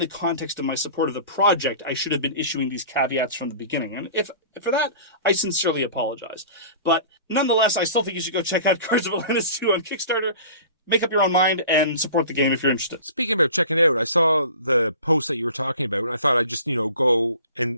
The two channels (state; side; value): inverted; both; correlation -0.42